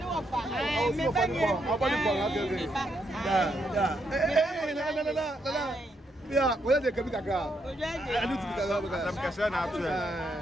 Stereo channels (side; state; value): both; normal; correlation 0.78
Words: yeah, where they can be a car. I do to I'm concerned